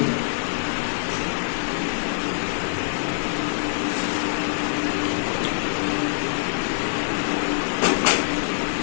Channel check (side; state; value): right; silent; digital silence